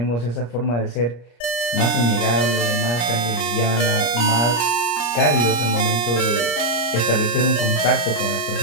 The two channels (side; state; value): right; late; 34 ms